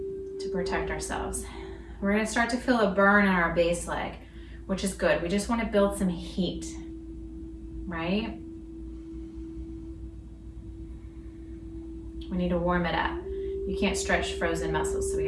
to protect ourselves. We're going to start to feel a burn in our base leg, which is good. We just want to build some heat, right? We need to warm it up. You can't stretch frozen muscles, so we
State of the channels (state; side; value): identical; both; correlation 1.00